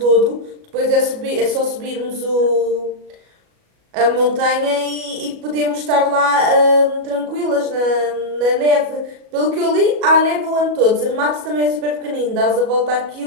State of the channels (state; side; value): late; left; 37 ms